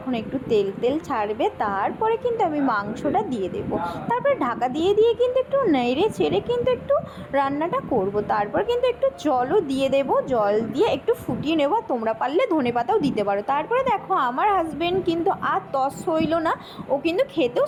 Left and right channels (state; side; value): identical; both; correlation 1.00